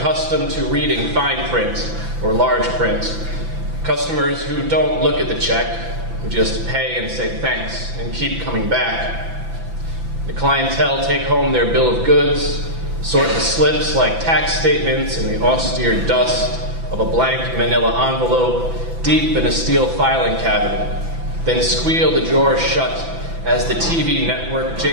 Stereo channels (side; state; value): left; late; 6.0 ms